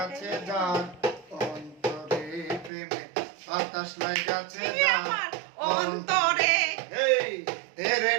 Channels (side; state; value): left; drops out; at 2.7 s